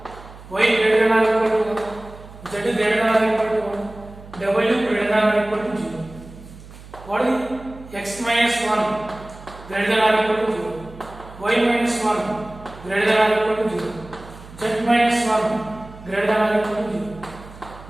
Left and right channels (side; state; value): right; noise; hum, 18 dB below the sound